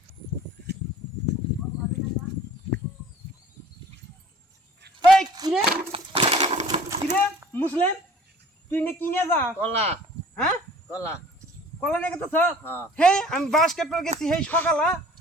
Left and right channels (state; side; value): normal; both; correlation 0.49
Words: এই কিরে কিরে মুসলিম তুই নে কিনে যা কলা হ্যাঁ কলা কলা নিয়ে গেছ হ্যাঁ হে আমি বাস কাটতে গেছি হেই সকালা